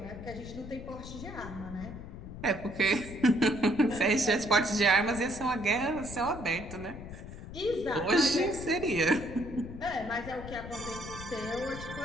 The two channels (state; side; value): noise; left; rumble, 11 dB below the sound